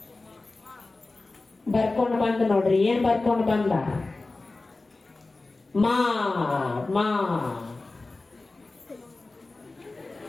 ಬರ್ಕೊಂಡು ಬಂದ ನೋಡ್ರಿ. ಏನ್ ಬರ್ಕೊಂಡು ಬಂದ? ಮಾ ಮಾ.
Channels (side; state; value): right; quieter; 3.3 dB